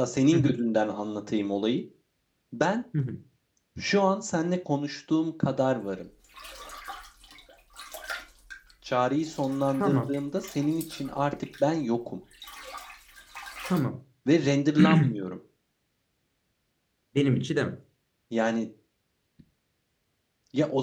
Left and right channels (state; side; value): identical; both; correlation 1.00